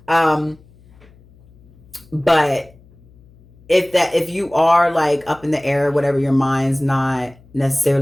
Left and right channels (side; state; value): left; noise; hum, 27 dB below the sound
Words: But if you are like up in the air, whatever, your mind's not